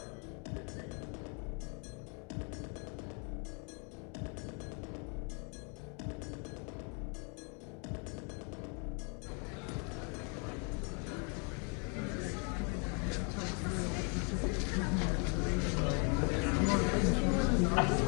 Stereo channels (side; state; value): right; quieter; 37.1 dB